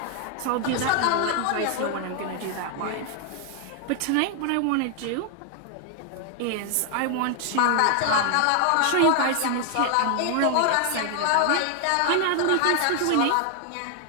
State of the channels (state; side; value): different; both; correlation 0.00